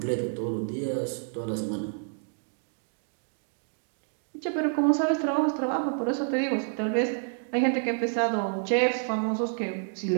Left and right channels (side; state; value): left; silent; digital silence